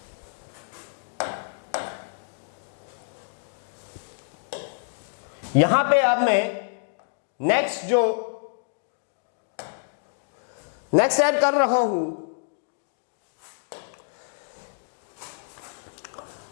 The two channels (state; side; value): silent; right; digital silence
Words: यहां पे अब मैं नेक्स्ट ऐड कर रहा हूं